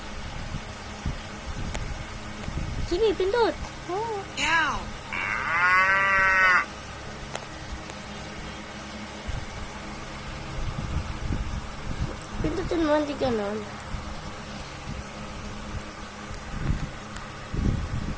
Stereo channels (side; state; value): both; identical; correlation 1.00